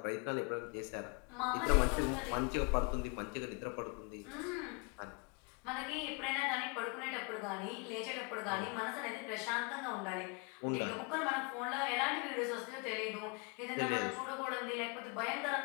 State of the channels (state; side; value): quieter; right; 32.1 dB